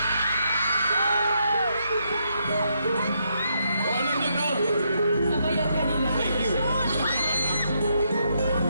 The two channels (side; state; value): both; inverted; correlation -0.78